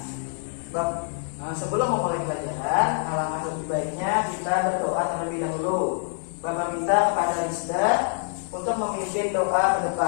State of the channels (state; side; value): silent; right; 61 dB below the other